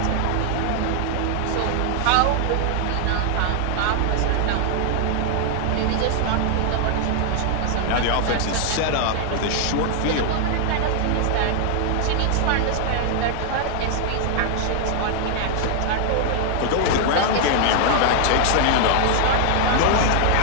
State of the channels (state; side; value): different; both; correlation 0.00